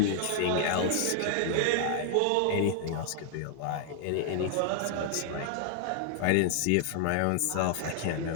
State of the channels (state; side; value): different; both; correlation 0.00